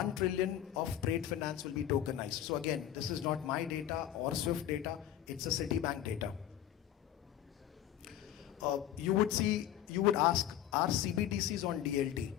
trillion of trade finance will be tokenized. So again, this is not my data or Swift data, it's a Citibank data. You would ask, are CBDCs on DLT?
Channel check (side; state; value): right; quieter; 11.3 dB